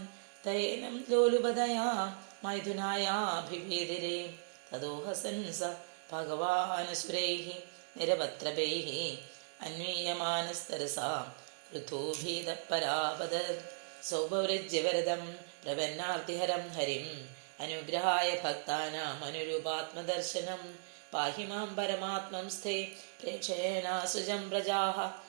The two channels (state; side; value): silent; left; 53 dB below the other